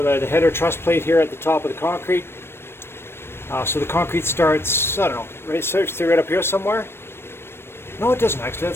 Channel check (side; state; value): right; late; 0.12 ms